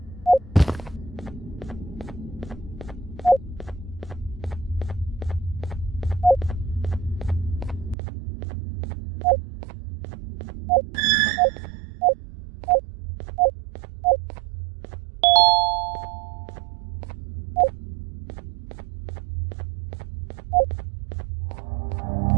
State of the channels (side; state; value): left; drops out; at 8.0 s